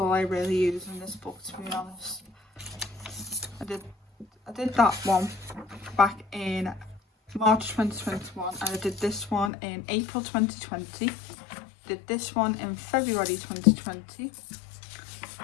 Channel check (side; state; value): right; drops out; at 9.5 s